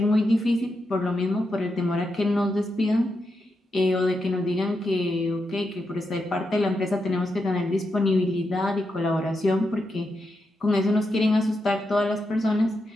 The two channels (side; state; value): both; normal; correlation 0.85